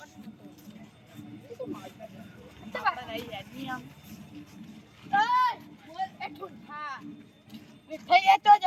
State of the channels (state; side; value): identical; both; correlation 1.00